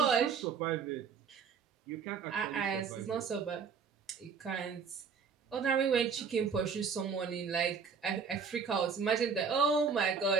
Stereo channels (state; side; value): quieter; left; 5.9 dB